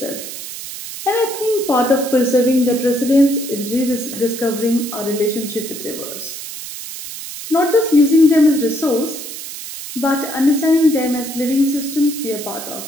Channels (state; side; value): noise; right; hiss, 10 dB below the sound